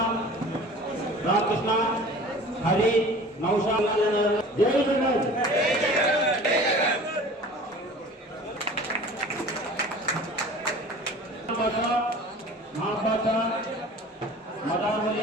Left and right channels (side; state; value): both; normal; correlation 0.43